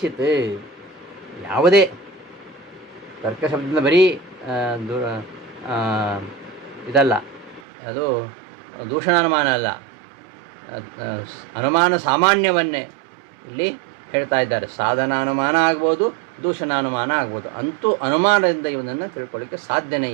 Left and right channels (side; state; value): left; drops out; at 7.6 s